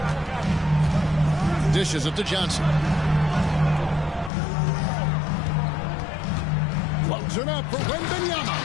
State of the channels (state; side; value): drops out; right; at 4.3 s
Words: Dishes it to Johnson. Loads it up for